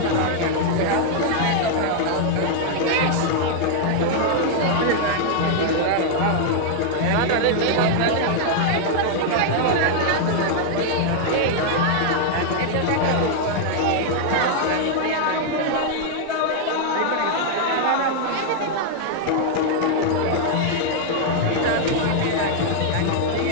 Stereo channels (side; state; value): both; different; correlation 0.00